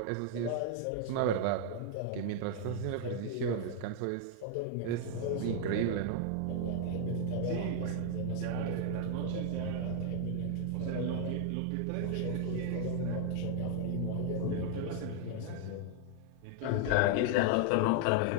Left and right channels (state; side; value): different; both; correlation 0.00